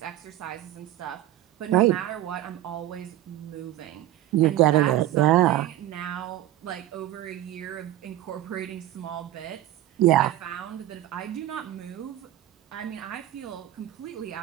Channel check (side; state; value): left; quieter; 13.7 dB